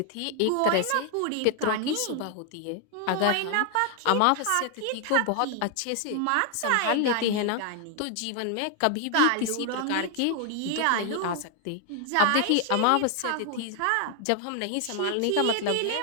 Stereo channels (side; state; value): both; different; correlation 0.00